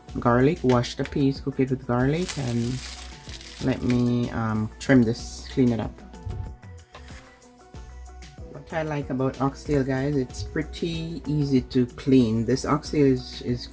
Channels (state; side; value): identical; both; correlation 1.00